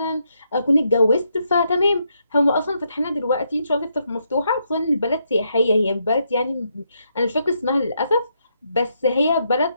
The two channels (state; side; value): inverted; both; correlation -0.78